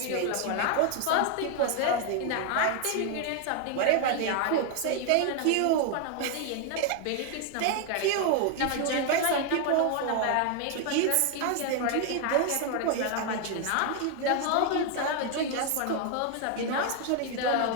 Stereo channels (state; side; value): different; both; correlation 0.00